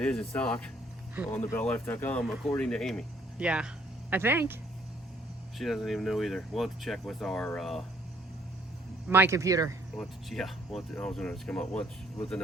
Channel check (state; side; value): normal; both; correlation 0.64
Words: is in stock on the BellLife.com, according to Amy. Yeah, I think. She doesn't even know either. We'll have to check with our my computer. I was going to come up with